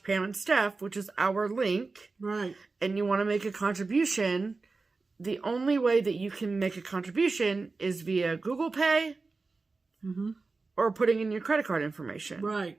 and Steph, which is our link, right, and you want to make a contribution, the only way that you can make a contribution is via Google Pay mm-hmm. or putting in your credit card information. Right.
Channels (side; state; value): left; quieter; 3.9 dB